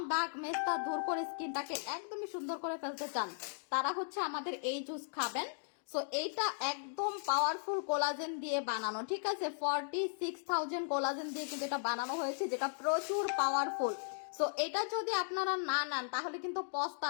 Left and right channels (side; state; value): right; silent; digital silence